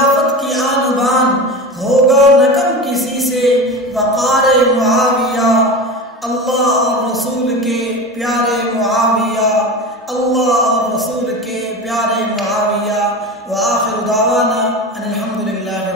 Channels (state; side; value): normal; both; correlation 0.28